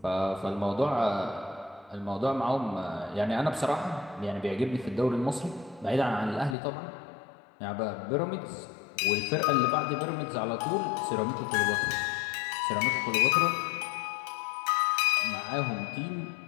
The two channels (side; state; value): right; drops out; at 6.6 s